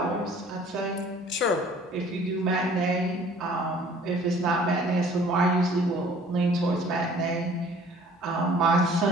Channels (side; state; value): both; normal; correlation 0.52